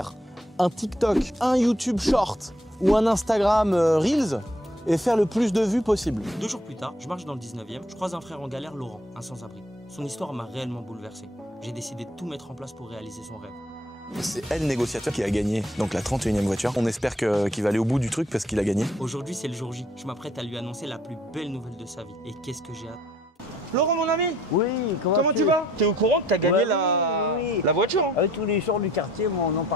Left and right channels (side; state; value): both; normal; correlation 0.63